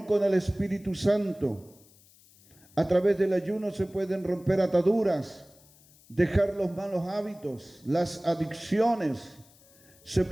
con el Espíritu Santo. A través del ayuno se pueden romper ataduras, dejar los malos hábitos, las adicciones. Se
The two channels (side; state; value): left; noise; hiss, 27 dB below the sound